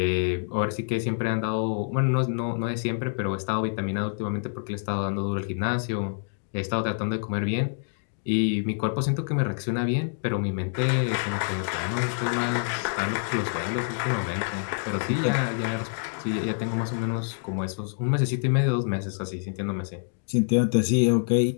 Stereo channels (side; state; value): right; silent; digital silence